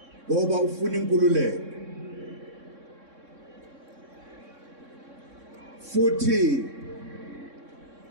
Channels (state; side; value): late; left; 3.6 ms